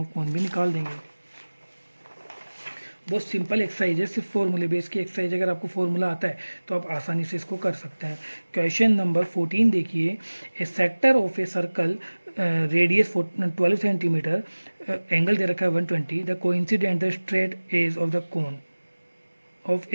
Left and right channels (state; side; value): inverted; both; correlation -1.00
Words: ऑफ कोन भी निकाल देंगे। बहुत सिंपल एक्सरसाइज है, सिर्फ फॉर्मूले बेस की एक्सरसाइज। अगर आपको फॉर्मूला आता है तो आप आसानी से इसको कर सकते हैं। क्वेश्चन नंबर 14 देखिए, a sector of a circle radius 12 centimetre, angle दे रखा है 120, the coincident the straight edge of the cone of